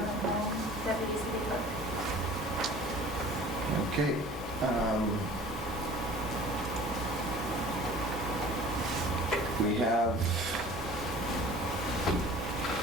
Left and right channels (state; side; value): normal; both; correlation 0.45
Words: Deputy City Clerk. Okay. We have